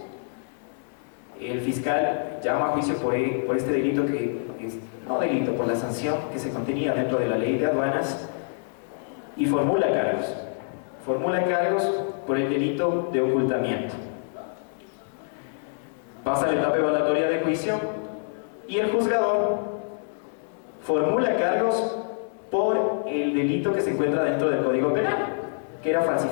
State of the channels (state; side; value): silent; right; digital silence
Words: El fiscal llama a juicio por este delito, que es no delito, por la sanción que se contenía dentro de la ley de aduanas, y formula cargos por el delito de ocultamiento. Pasa la etapa evaluatoria de juicio y el juzgador formula cargos por el delito que se encuentra dentro del Código Penal, que era